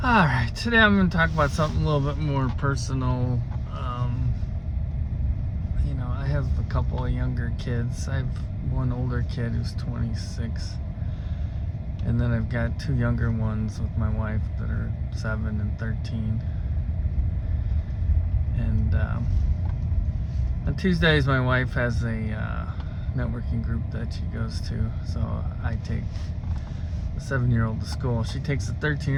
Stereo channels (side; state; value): both; identical; correlation 1.00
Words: Alright, today I'm going to talk about something a little bit more personal. I have a couple of younger kids. I have one older kid who's 26. And then I've got two younger ones with my wife that are 7 and 13. And on Tuesdays, my wife has a networking group that she goes to. So I take the 7-year-old to school. She takes the